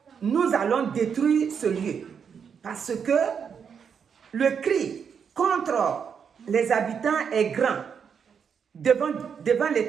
nous allons détruire ce lieu. Parce que le cri contre les habitants est grand devant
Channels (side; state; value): left; quieter; 6.9 dB